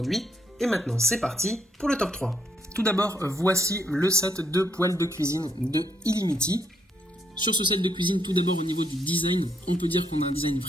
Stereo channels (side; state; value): both; normal; correlation 0.74